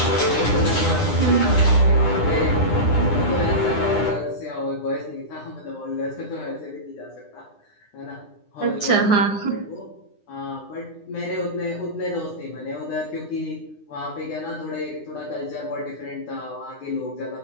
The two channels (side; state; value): right; late; 9.8 ms